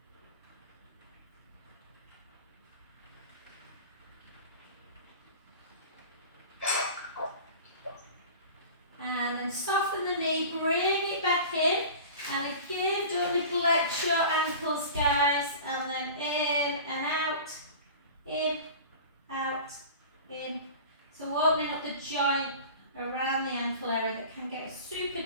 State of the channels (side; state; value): both; inverted; correlation -0.38